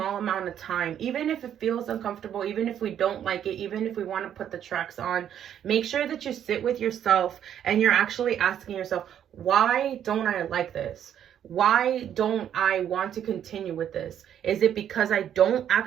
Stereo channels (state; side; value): quieter; left; 9.8 dB